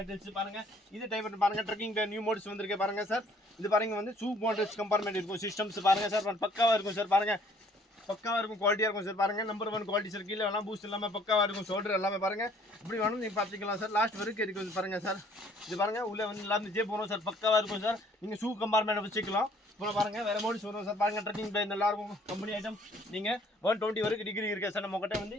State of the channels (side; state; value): both; normal; correlation 0.59